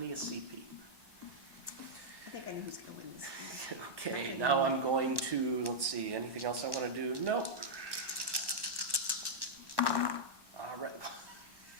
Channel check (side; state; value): left; late; 1.1 ms